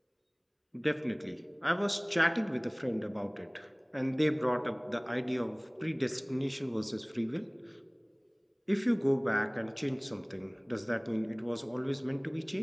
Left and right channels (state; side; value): identical; both; correlation 1.00